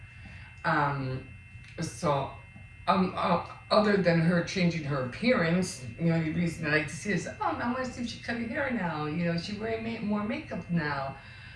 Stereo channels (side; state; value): both; identical; correlation 1.00